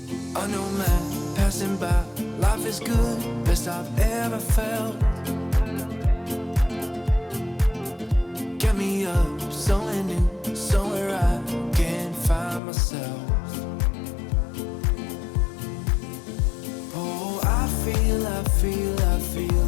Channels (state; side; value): drops out; right; at 12.6 s